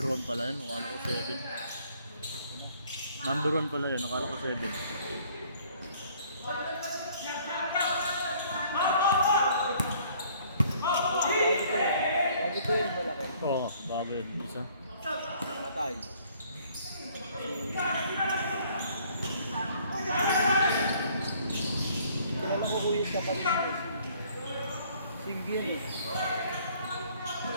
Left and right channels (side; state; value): both; inverted; correlation -0.59